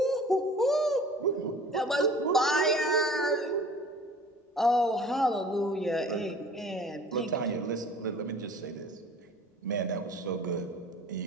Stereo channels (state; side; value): normal; both; correlation 0.46